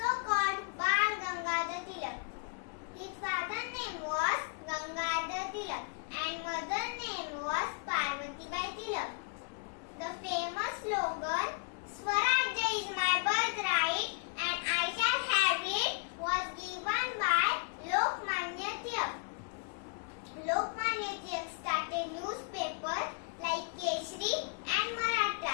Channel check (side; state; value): right; quieter; 36.7 dB